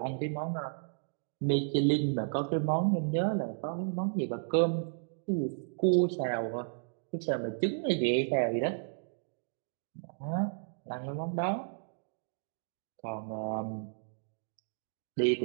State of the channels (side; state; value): left; silent; digital silence